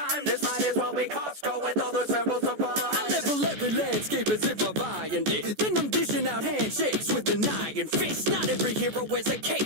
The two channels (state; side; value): late; left; 14 ms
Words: This might as well be Costco with all the samples supplies. I level every landscape as if I'm buying it. Then I'm dishing out handshakes with an iron fist. Not every hero wears a